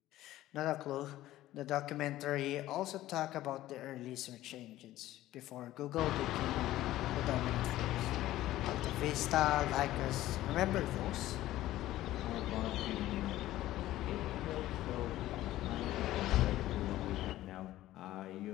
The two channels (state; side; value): quieter; right; 15.0 dB